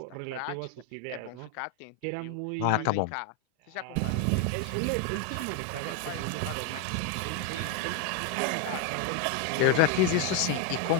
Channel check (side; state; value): both; different; correlation 0.01